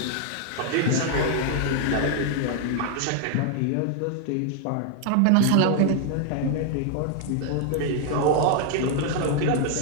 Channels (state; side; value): different; both; correlation 0.00